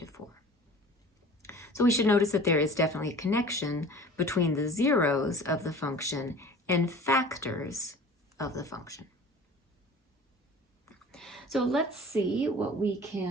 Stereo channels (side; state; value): both; normal; correlation 0.42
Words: So we should notice that there is definitely a connection between the zeros of the function and factors of the function. So let's see what we